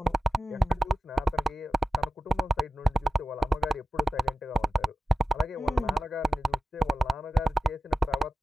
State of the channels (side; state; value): both; normal; correlation 0.92